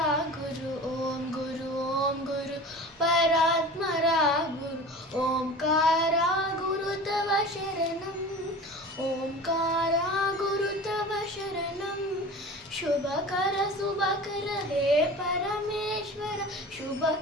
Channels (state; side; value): normal; both; correlation 0.36